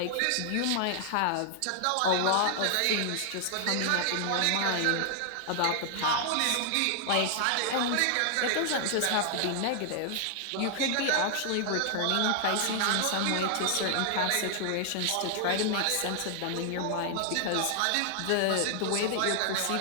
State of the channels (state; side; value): different; both; correlation 0.00